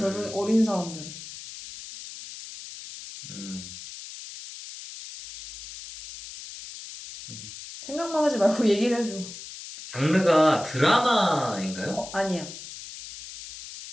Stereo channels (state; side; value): noise; left; hiss, 13 dB below the sound